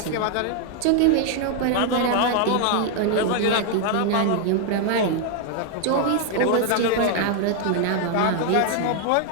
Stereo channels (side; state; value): both; different; correlation 0.00